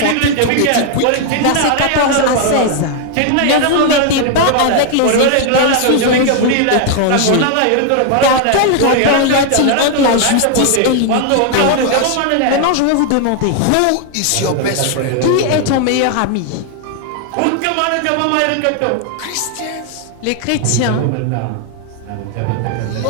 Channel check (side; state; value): both; different; correlation 0.00